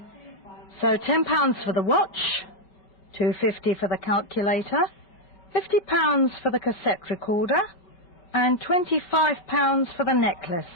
So £10 for the watch, $2.50 for the calculator, £50 for the cassette recorder, and £25 for the necklace.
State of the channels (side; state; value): right; late; 5.0 ms